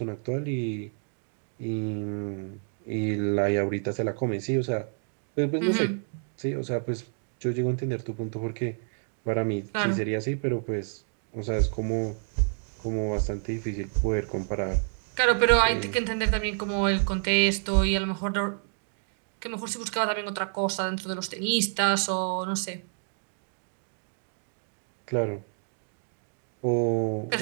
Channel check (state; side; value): silent; left; 55 dB below the other